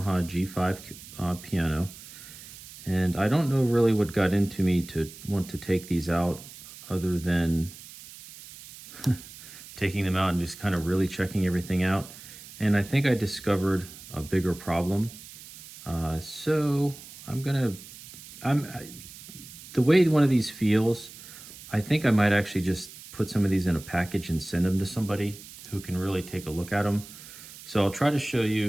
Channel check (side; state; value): right; noise; hiss, 16 dB below the sound